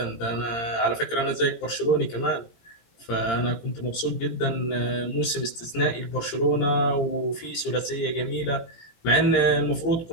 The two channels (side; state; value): right; late; 17 ms